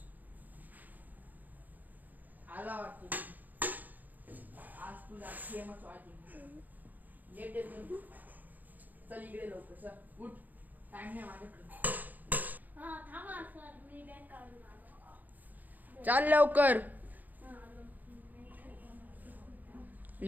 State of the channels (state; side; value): late; left; 0.083 ms